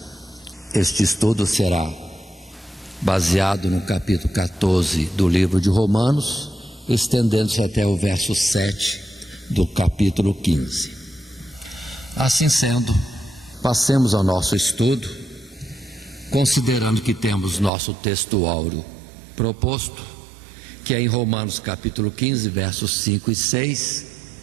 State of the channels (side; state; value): left; drops out; at 17.7 s